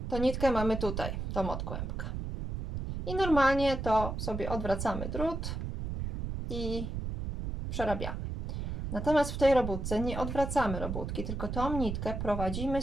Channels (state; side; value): noise; right; rumble, 4 dB below the sound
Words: to nitkę mamy tutaj, tą od kłębka. I normalnie to sobie odwracamy drut i przerabiamy. Natomiast w tej robótce nie odwracamy robótki, tylko tą nitkę